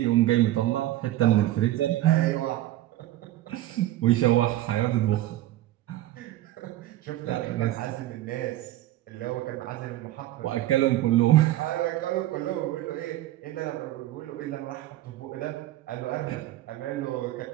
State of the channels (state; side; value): quieter; left; 14.8 dB